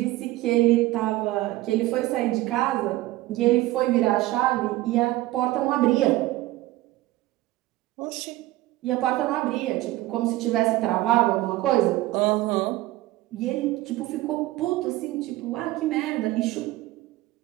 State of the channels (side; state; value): left; quieter; 17.3 dB